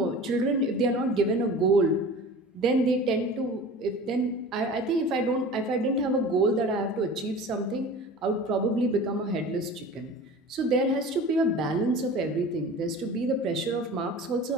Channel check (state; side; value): normal; both; correlation 0.38